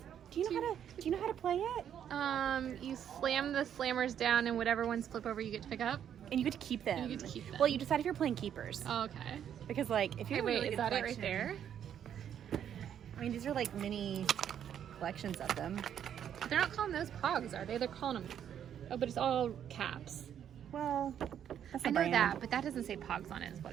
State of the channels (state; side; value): quieter; left; 9.4 dB